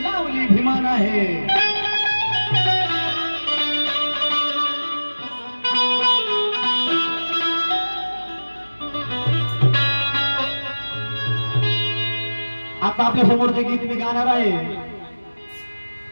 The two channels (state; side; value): inverted; both; correlation -1.00